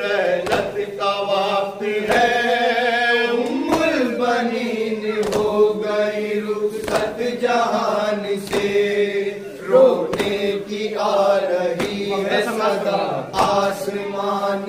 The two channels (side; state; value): both; identical; correlation 1.00